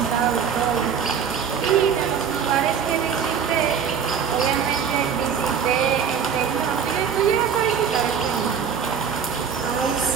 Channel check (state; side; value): quieter; left; 7.3 dB